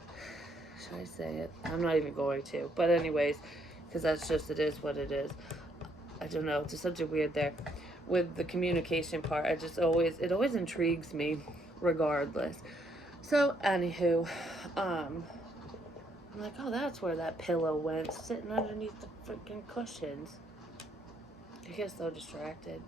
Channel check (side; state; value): both; normal; correlation 0.71